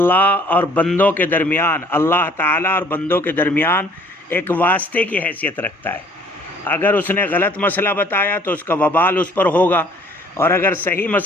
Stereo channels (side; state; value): both; normal; correlation 0.57